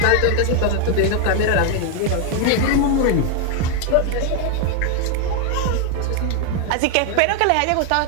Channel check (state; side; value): different; both; correlation 0.01